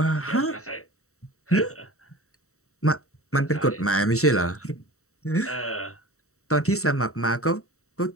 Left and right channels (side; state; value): right; late; 0.64 ms